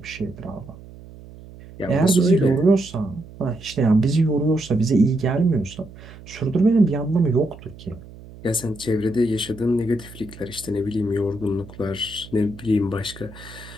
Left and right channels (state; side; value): noise; right; hum, 18 dB below the sound